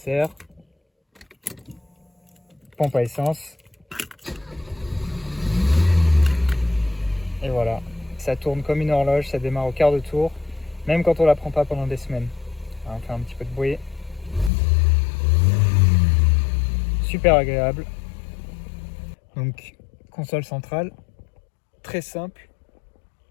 pompe à essence, et voilà. Ça tourne comme une horloge, ça démarre au quart de tour, même quand on ne la prend pas pendant des semaines. Alors, on fait un petit peu de bruit. Super agréable. Donc, console centrale, très simple,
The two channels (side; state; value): right; drops out; at 14.5 s